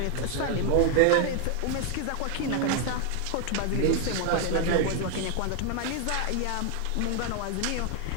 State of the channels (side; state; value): both; different; correlation 0.00